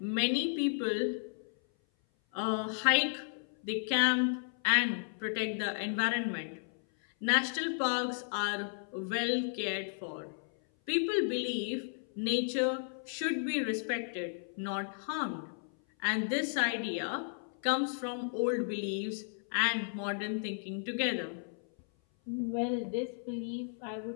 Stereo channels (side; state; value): right; silent; 55 dB below the other